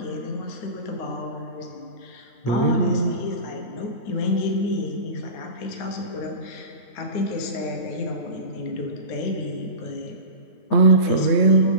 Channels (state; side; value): late; right; 9.2 ms